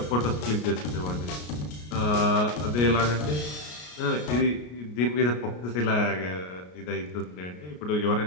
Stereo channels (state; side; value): late; right; 33 ms